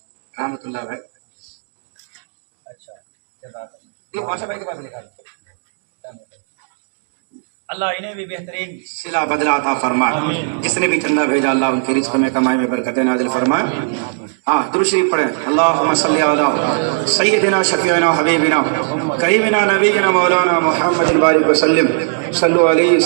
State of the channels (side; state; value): left; silent; 64 dB below the other